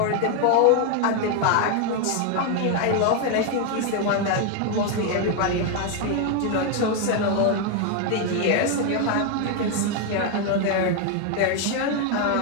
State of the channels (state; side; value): different; both; correlation 0.01